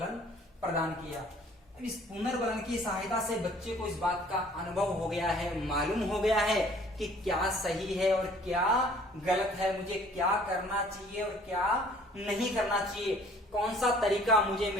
प्रदान किया। अब इस पुनर्बलन की सहायता से बच्चे को इस बात का अनुभव हो गया है, मालूम हो गया है कि क्या सही है और क्या गलत है, मुझे क्या करना चाहिए और क्या नहीं करना चाहिए, कौन सा तरीका मुझे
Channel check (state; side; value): normal; both; correlation 0.54